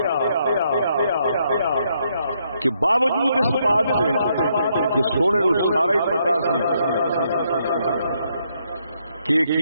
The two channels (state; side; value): inverted; both; correlation -0.74